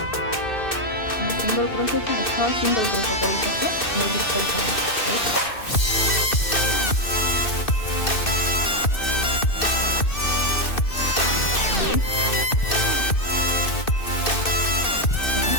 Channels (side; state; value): right; late; 2.6 ms